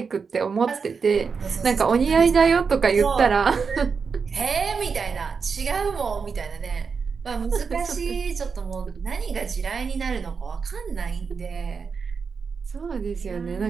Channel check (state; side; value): quieter; left; 5.5 dB